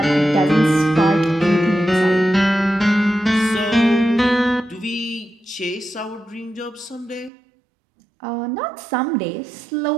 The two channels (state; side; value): drops out; left; at 7.3 s